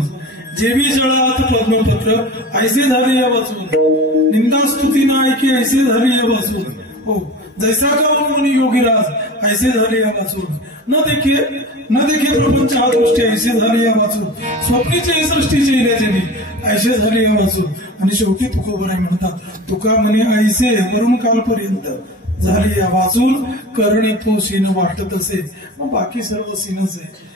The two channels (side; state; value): both; normal; correlation 0.34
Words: जेवी जळात पद्मपत्र, ऐसे झाले या वाचून, निंदा स्तुती ना ऐके, ऐसे झाले या वाचून, हो जैसा का मुनी योगीराज, ऐसे झाले या वाचून, न देखे प्रपंच हा दृष्टी, ऐसे झाले या वाचून, स्वप्नीचे सृष्टीचे इल्याचे ऐसे झाले या वाचून, आणि शेवटी तुकोबराय म्हणतात, तुका म्हणे ऐसे वरून कालपर्यंत झाले या वाचून, करणे तो सीन वाटत असे. मग बाकी सर्व सीनच आहे.